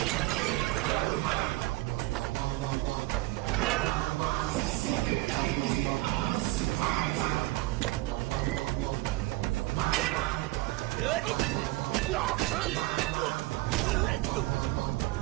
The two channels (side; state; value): left; quieter; 19.8 dB